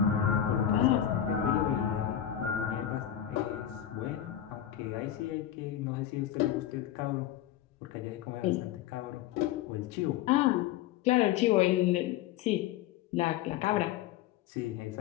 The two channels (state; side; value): quieter; right; 11.2 dB